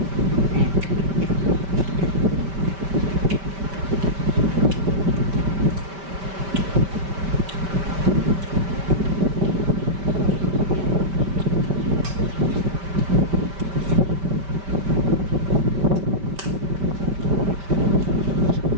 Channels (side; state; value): left; late; 5.1 ms